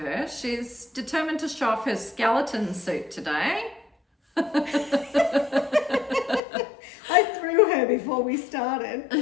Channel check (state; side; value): drops out; right; at 6.4 s